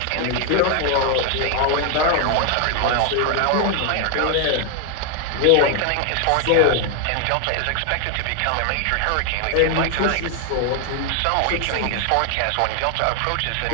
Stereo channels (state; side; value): different; both; correlation 0.01